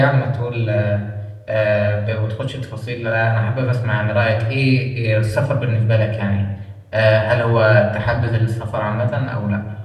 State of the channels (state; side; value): identical; both; correlation 1.00